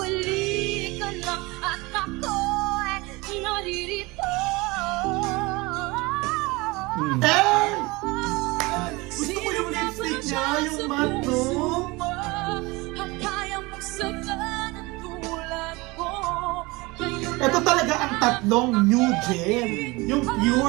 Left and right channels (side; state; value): left; quieter; 23.5 dB